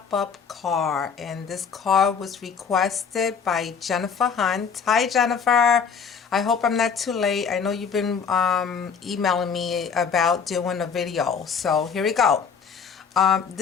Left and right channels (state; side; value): quieter; right; 6.4 dB